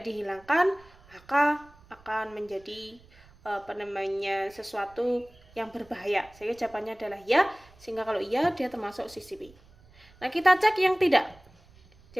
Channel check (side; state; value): right; noise; rumble, 26 dB below the sound